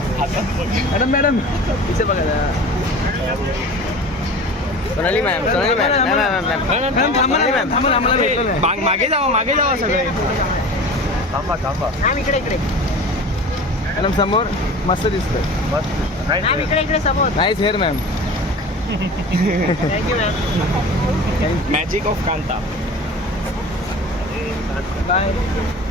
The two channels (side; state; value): both; normal; correlation 0.37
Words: मॅडम मॅडम इथे बघा ना. Sonali ma'am Sonali ma'am ma'am थांबा ना मॅम, थांबा ना, आम्हाला भेटलं नाही. मागे जावा सगळे. थांबा थांबा मॅम इकडे मॅडम समोर मस्त दिसतंय. मॅम इकडे समोर. Nice hair ma'am. Thank you ma'am. Magic of Kanta. Bye